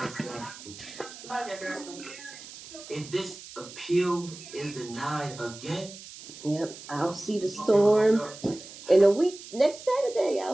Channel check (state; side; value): noise; right; hiss, 15 dB below the sound